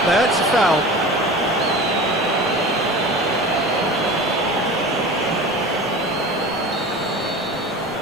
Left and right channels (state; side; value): normal; both; correlation 0.35